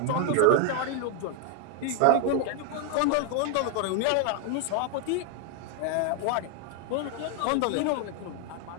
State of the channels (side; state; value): both; different; correlation 0.00